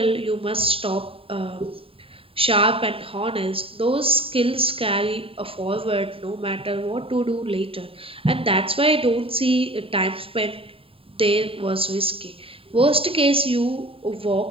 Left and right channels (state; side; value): late; left; 0.27 ms